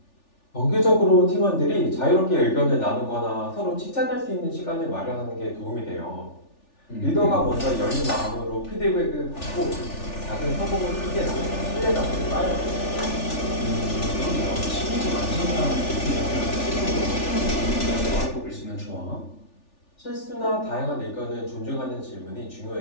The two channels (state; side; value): late; right; 3.4 ms